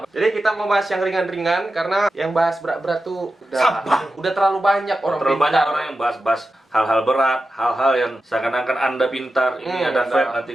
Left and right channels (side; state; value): both; normal; correlation 0.92